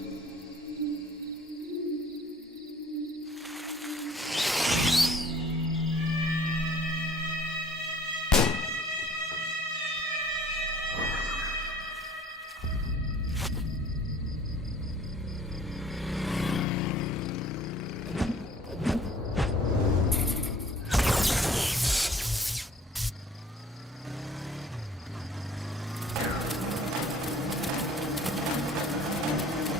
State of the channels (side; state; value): both; normal; correlation 0.52